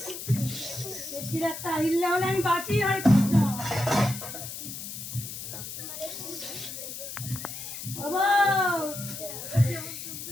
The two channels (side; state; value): left; noise; hiss, 8 dB below the sound